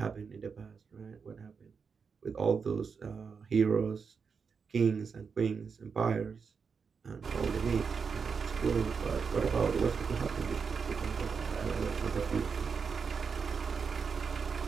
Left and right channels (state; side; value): quieter; left; 5.7 dB